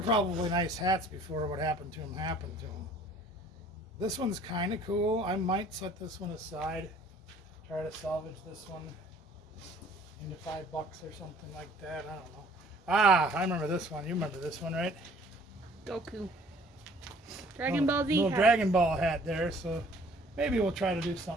nice hats before what happened to them happened to them. This one's kind of cool. I might set this one aside. Try to salvage this one into $5 or something like that. I don't know. Ah, I remember this one. You remember this one, right? Goku. Dragon Ball Z little hat. Dragon Ball hat there, so maybe we'll try to do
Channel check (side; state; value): both; normal; correlation 0.55